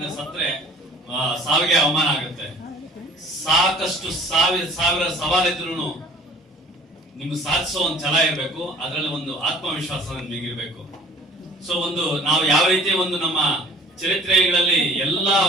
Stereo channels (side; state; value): both; normal; correlation 0.50